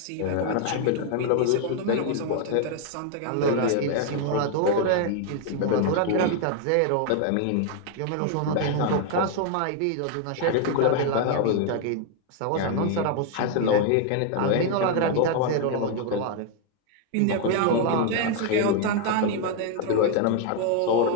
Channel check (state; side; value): different; both; correlation 0.00